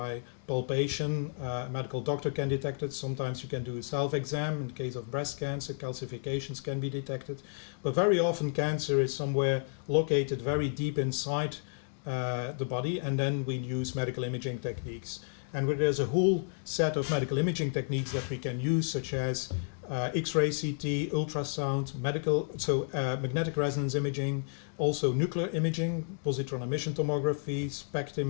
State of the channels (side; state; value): right; silent; 57 dB below the other